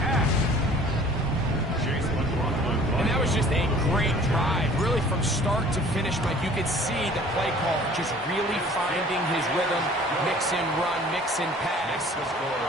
half. And that was just a great drive, really from start to finish. But you could see the play call just really finding his rhythm, mix and run, mix and pass.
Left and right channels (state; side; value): normal; both; correlation 0.50